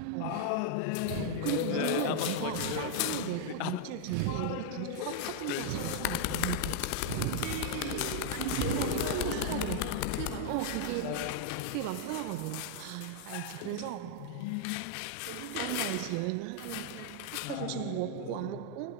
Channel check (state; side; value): different; both; correlation 0.00